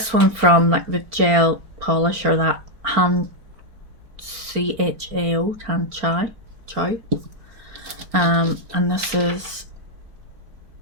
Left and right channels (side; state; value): left; late; 4.4 ms